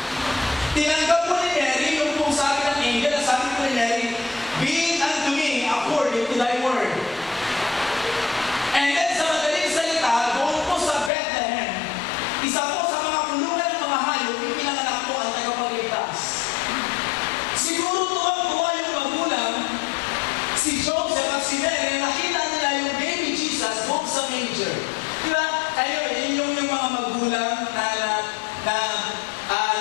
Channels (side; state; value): right; drops out; at 11.1 s